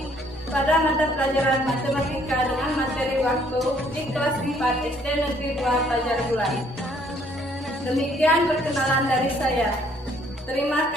pada mata pelajaran matematika dengan materi waktu di kelas 4 SD Negeri 2 Fajar Bulan. Demikian perkenalan dari saya. Terima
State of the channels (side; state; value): both; normal; correlation 0.63